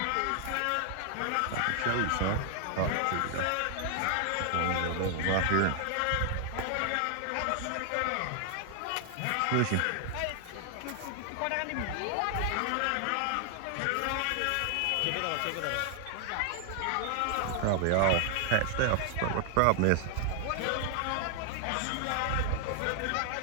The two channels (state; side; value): different; both; correlation 0.00